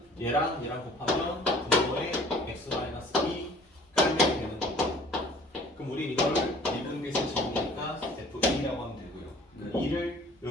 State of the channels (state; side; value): normal; both; correlation 0.50